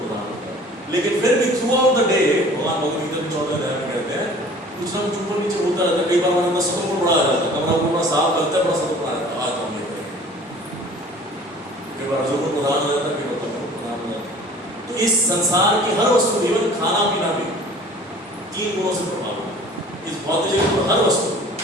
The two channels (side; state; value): both; normal; correlation 0.47